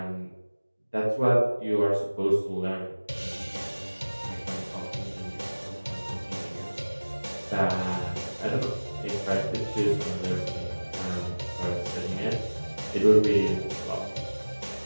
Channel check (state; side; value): inverted; both; correlation -1.00